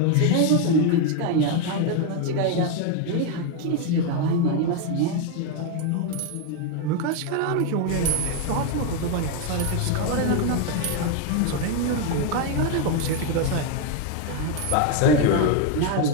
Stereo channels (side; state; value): both; different; correlation 0.01